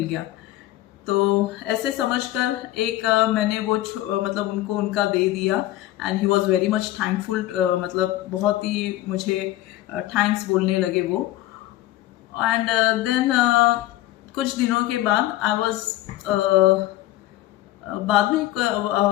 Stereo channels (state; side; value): quieter; right; 15.6 dB